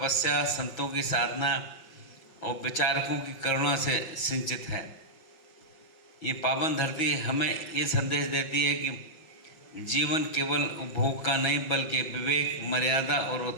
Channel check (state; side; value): late; right; 6.2 ms